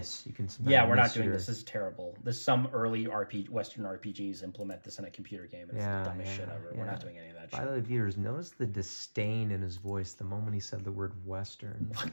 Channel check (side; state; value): both; inverted; correlation -1.00